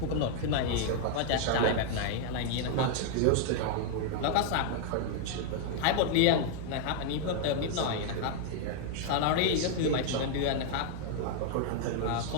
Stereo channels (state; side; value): different; both; correlation 0.00